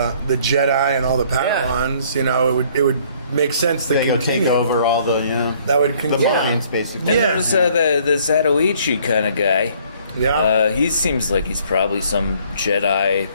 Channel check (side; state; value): both; inverted; correlation -0.60